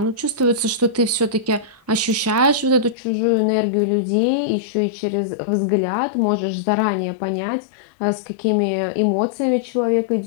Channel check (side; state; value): right; drops out; at 3.0 s